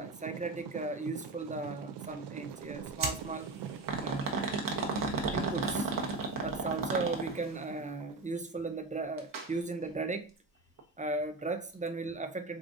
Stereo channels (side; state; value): left; quieter; 3.2 dB